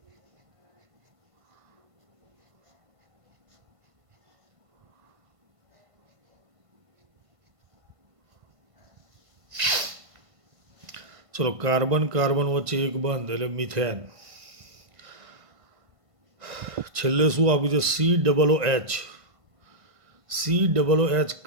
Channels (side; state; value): left; late; 1.5 ms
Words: ચલો કાર્બન કાર્બન વચ્ચે એક બંધ એટલે મિથેન. છેલ્લે શું આપ્યું છે? COOH. COOH